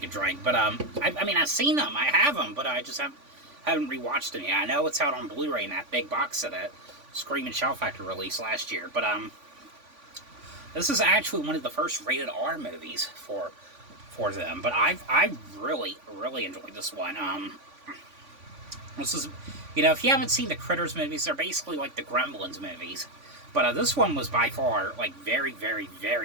a drink, but I mean, I've seen them, I have them, but I just haven't rewatched them yet. I know it's out on Blu-ray in that big box set that Scream and Shout Factory released last year, but this is actually one of the first rated R movies for them. But I really enjoyed this one. This is, you know, if you haven't seen the Critters movies, they're basically like the Gremlins movies. But this one was by far like very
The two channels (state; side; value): late; left; 3.5 ms